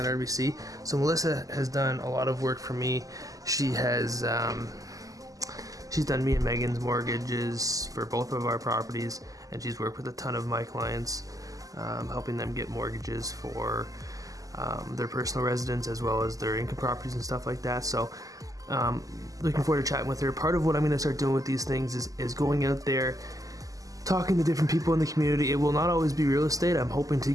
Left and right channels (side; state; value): left; late; 0.17 ms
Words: RBC. So Melissa has done a lot of work for me. She has she's done me and Megan's mortgages for both of our properties, and she's worked with a ton of my clients, helping them get mortgages for their personal residence as well as their income properties and stuff like that. So looking forward to chatting with her. Part of what I'm going to start doing with these things is going out there, talking to different people in the community. It will not always be real estate. I'm hoping to